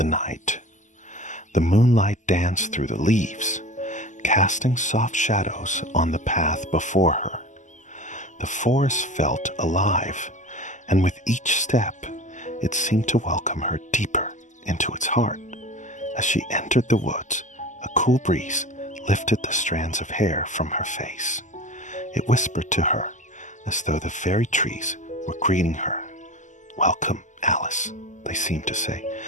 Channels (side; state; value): right; late; 0.36 ms